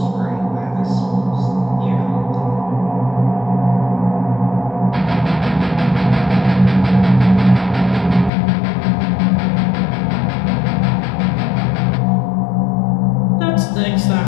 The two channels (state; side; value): drops out; right; at 8.3 s